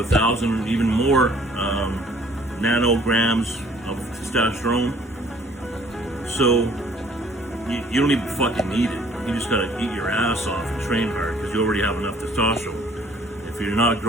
even more nanograms of testosterone. So you don't even fucking need it. You just gotta eat your ass off and train hard, because you already have enough testosterone. if you're not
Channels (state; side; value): normal; both; correlation 0.57